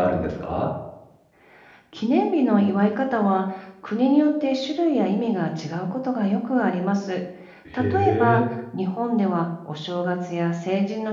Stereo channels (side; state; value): both; identical; correlation 1.00